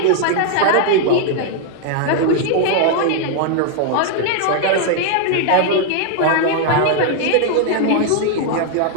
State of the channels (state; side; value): different; both; correlation 0.00